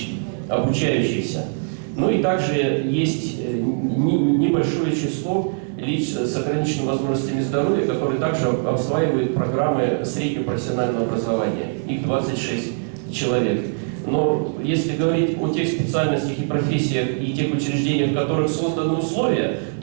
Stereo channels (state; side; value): silent; left; digital silence